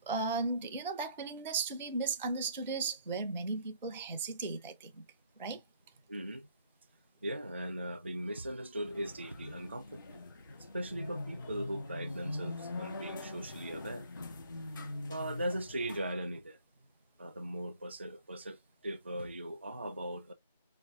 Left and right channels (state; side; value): inverted; both; correlation -0.64